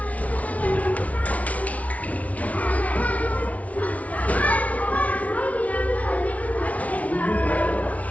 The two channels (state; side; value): late; right; 0.068 ms